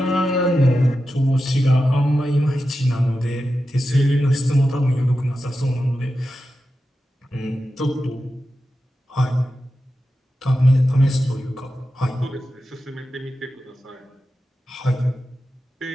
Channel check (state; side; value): normal; both; correlation 0.91